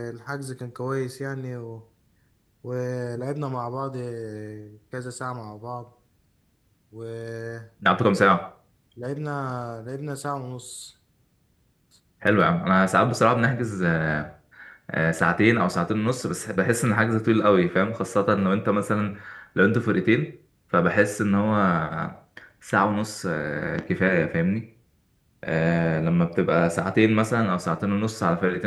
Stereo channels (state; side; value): identical; both; correlation 1.00